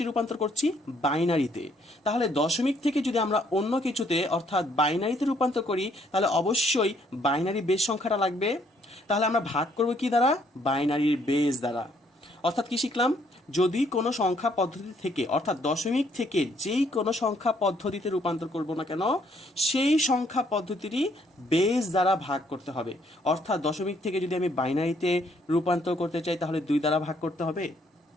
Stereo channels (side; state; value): both; normal; correlation 0.68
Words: রূপান্তর করছি? বাইনারিতে। তাহলে দশমিক থেকে যদি আমরা অন্য কিছুতে অর্থাৎ বাইনারিতে রূপান্তর করি তাহলে অবশ্যই বাইনারি বেজ সংখ্যাটা লাগবে। তাহলে আমরা ভাগ করব কি দ্বারা? বাইনারির বেজ দ্বারা। অর্থাৎ কি শিখলাম? যদি কোনো সংখ্যা পদ্ধতি থেকে অর্থাৎ দশমিক থেকে যেই কোনো সংখ্যা পদ্ধতিতে রূপান্তর করব না কেন সেই সংখ্যা পদ্ধতিরই বেজ দ্বারা ভাগ করতে হবে। অর্থাৎ দশমিক থেকে যদি আমি বাইনারিতে রূপান্তর করতে চাই তাহলে 2 দ্বারা ভাগ করতে হবে।